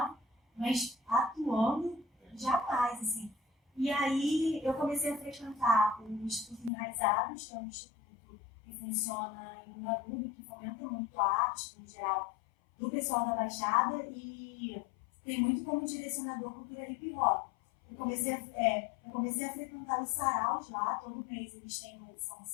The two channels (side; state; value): right; drops out; at 6.7 s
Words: mas atuando, jamais, assim. E aí eu comecei a frequentar o Instituto Enraizados, que é um instituto que funciona em Ubatuba, que fomenta muito a arte, no geral, do pessoal da Baixada, e tem muito como direcionador cultura hip hop. Eu comecei a frequentar os saraus lá, todo mês eles têm uma edição de